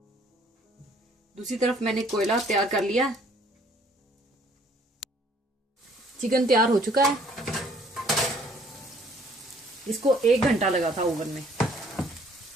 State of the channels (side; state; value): both; normal; correlation 0.60